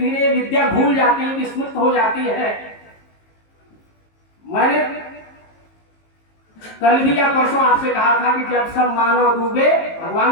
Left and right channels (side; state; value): right; late; 19 ms